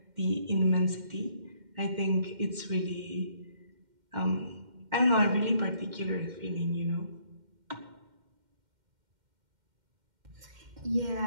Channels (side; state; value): left; late; 2.1 ms